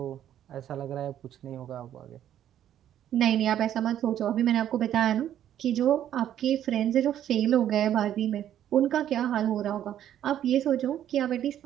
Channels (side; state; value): left; quieter; 10.9 dB